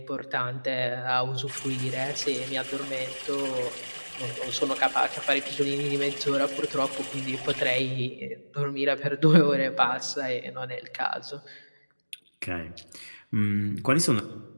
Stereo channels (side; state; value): both; inverted; correlation -1.00